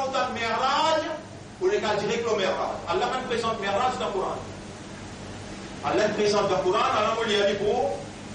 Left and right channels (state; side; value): identical; both; correlation 1.00